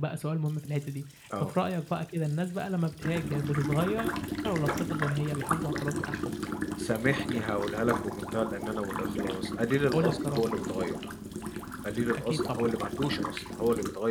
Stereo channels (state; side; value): identical; both; correlation 1.00